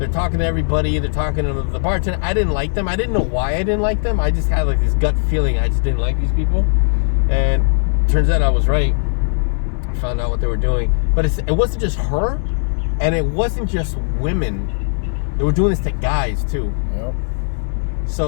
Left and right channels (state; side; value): silent; right; digital silence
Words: talking to everybody. They're talking to the bartender. I didn't like them. I didn't know why I didn't like them. I just had like this gut feeling. I just didn't like these people. And turns out I was right. I found out what they were doing. But it wasn't just her, and it wasn't just women. They were doing this to guys too. Yep.